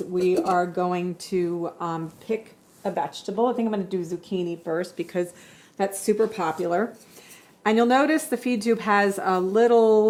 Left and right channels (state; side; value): identical; both; correlation 1.00